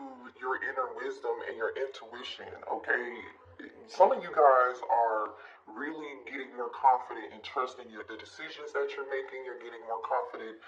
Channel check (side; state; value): both; identical; correlation 1.00